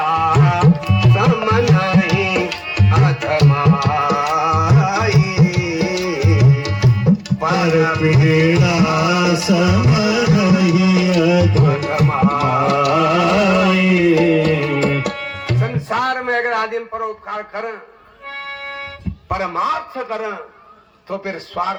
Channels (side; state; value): both; identical; correlation 1.00